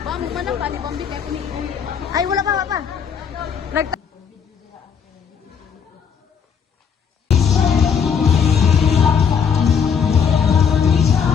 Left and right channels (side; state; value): right; quieter; 6.9 dB